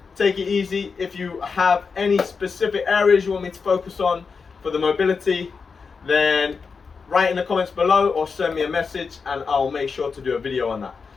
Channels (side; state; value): right; quieter; 5.2 dB